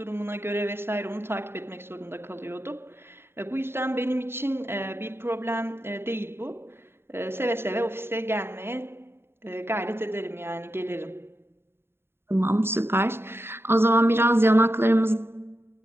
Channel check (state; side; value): late; left; 0.11 ms